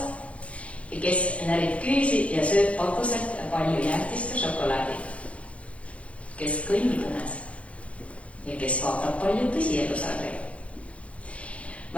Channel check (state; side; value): late; right; 0.063 ms